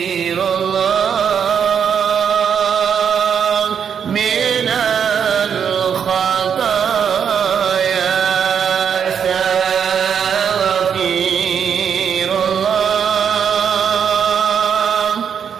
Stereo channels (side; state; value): left; quieter; 7.6 dB